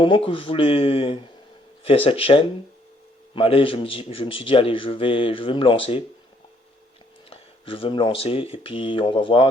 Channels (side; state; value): both; normal; correlation 0.67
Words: que je voulais faire cette chaîne. Mais allez, je me suis dit, allez, je vais me lancer. Je vais me lancer et puis on va